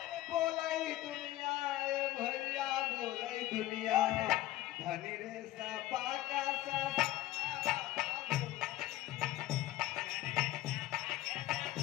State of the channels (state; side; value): quieter; right; 15.2 dB